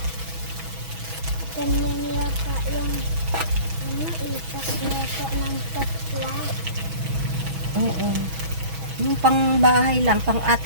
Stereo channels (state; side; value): late; left; 6.1 ms